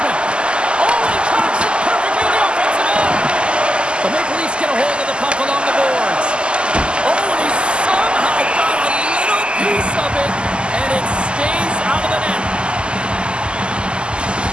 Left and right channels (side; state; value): left; late; 0.050 ms